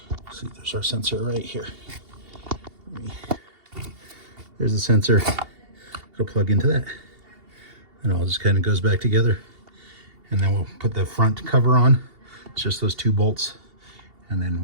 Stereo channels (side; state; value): left; late; 2.8 ms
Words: see, there's our sensor right here. There's the sensor. It'll plug into that. And it all just kind of goes back together. And then we'll put the front cover on. It's just those 2 bolts. And then